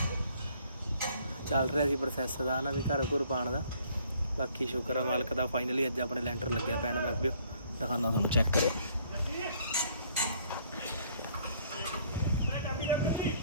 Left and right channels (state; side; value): inverted; both; correlation -0.62